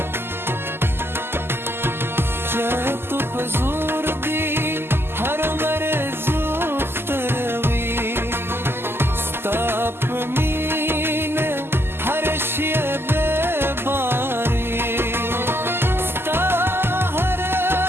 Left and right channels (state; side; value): late; left; 0.11 ms